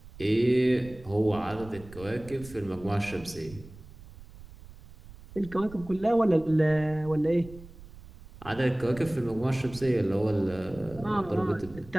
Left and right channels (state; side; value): noise; right; rumble, 18 dB below the sound